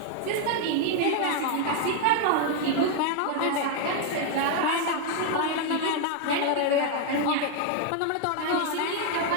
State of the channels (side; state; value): both; different; correlation 0.00